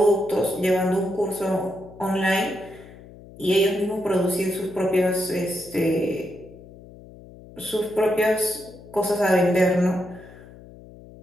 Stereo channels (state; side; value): noise; left; hum, 19 dB below the sound